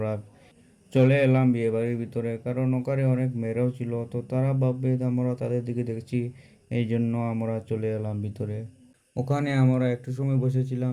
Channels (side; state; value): both; identical; correlation 1.00